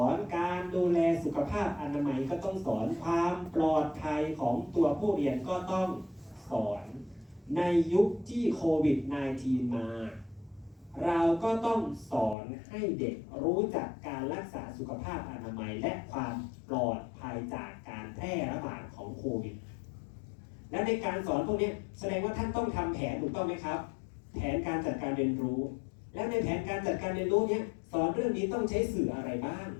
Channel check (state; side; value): drops out; right; at 12.4 s